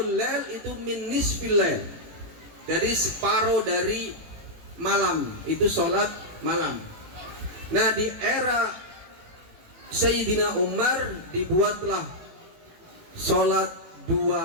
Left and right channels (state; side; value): late; left; 18 ms